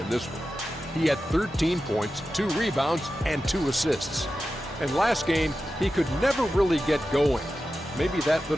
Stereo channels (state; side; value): normal; both; correlation 0.92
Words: this one. He had 13 points, 2 rebounds, and 2 assists. And last game, he could never really get going. Maybe that